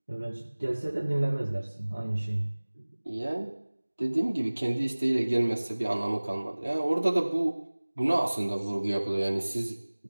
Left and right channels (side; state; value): both; inverted; correlation -1.00